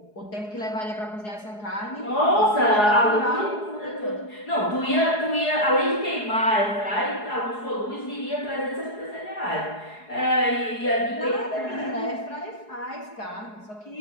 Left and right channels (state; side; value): late; right; 4.8 ms